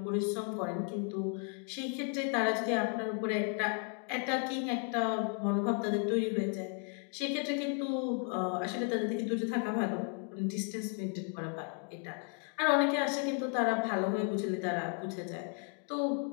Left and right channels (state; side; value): quieter; right; 39.0 dB